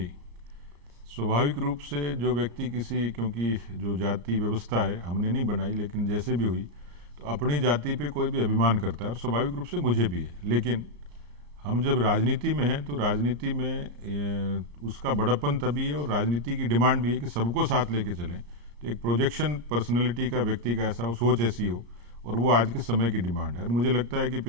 स्वाभाविक रूप से जो व्यक्ति क्योंकि जो जाति व्यवस्था है हमने नहीं बनाई, लेकिन जैसे भी हुई तो अपनी जाति पे कोई भी अभिमान करता है, और स्वाभाविक रूप से मुझे भी है। लेकिन हम जब राजनीति में हैं तो राजनीति में उसका बड़प्पन तभी है, और राजनीति की डिमांड भी है कि सबको साथ लेके चलें। तो एक प्रोजेक्शन पर्सनैलिटी का, व्यक्ति का ऐसा हो, सोच ऐसी हो, और वो आज के समय की डिमांड है। और मुझे लगता है कि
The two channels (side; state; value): left; late; 35 ms